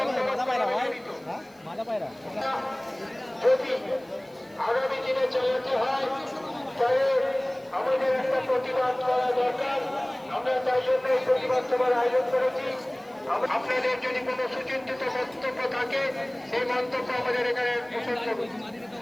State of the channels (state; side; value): noise; right; hiss, 30 dB below the sound